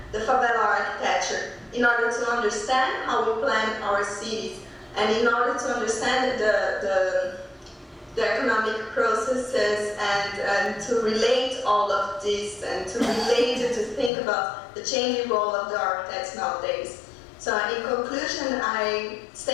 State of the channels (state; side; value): drops out; right; at 14.1 s